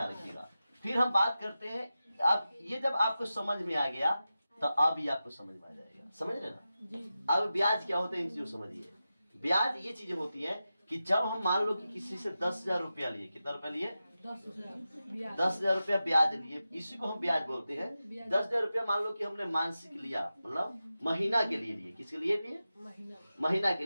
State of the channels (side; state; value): both; inverted; correlation -0.93